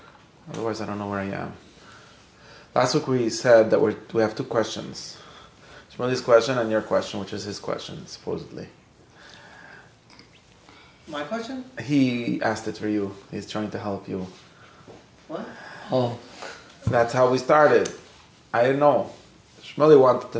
Otherwise, I don't know where I am. Last week we said that we have two questions. Shmuli's question and your question, which is his question, supposedly. My question? He asked it for you. He's trying to help you. What? Oh. That's how we started. I didn't know. Shmuli wanted to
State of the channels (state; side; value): identical; both; correlation 1.00